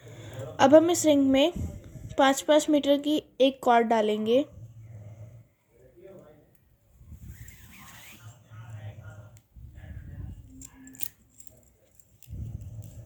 अब हम इस रिंग में 5-5 मीटर की एक कॉर्ड डालेंगे।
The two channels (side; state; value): both; identical; correlation 1.00